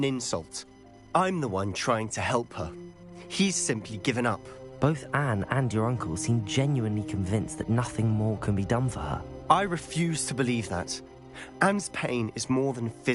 insult. I'm the one trying to help her. He's simply given up. Both Anne and your uncle seem genuinely convinced that nothing more can be done for her. I refuse to believe that. Anne's pain is more than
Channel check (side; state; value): both; identical; correlation 1.00